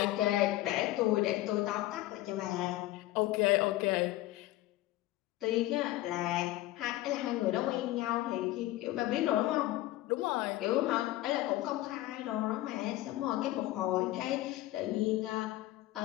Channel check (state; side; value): quieter; right; 16.5 dB